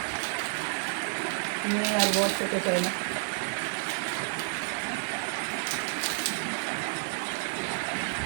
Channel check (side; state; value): left; silent; digital silence